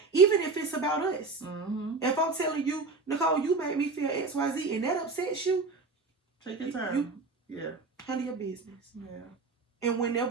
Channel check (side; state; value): left; quieter; 4.0 dB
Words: even if it's about us. If I'm telling you, Nicole, you made me feel XYZ and that upsets you, take your time. Handle your business. Yeah. And